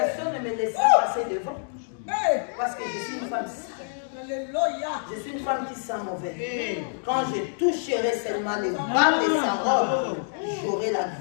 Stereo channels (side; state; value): right; silent; digital silence